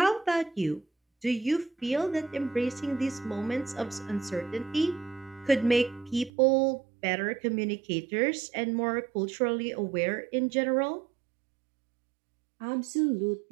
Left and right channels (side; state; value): left; drops out; at 6.3 s